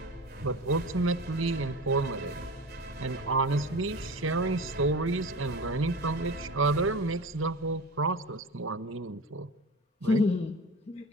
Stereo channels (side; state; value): both; normal; correlation 0.32